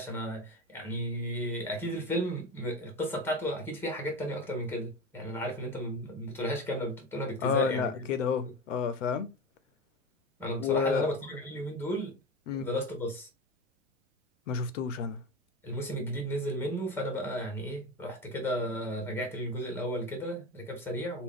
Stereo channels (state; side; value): normal; both; correlation 0.25